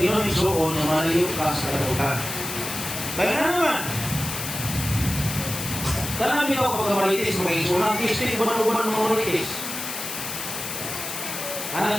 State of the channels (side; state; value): left; noise; hiss, 6 dB below the sound